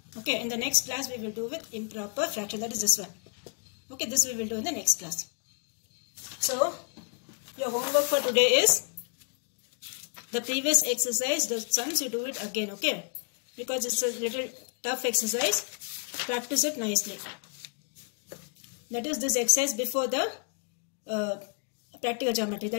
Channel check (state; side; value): quieter; right; 39.5 dB